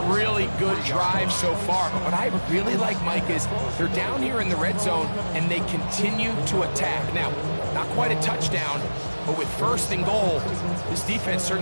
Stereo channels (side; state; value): both; inverted; correlation -1.00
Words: really good drive so far, but what I really like, Mike, is they're down here in the red zone, and they continue to attack. Now, not quite a touchdown, but with first and goal, this defense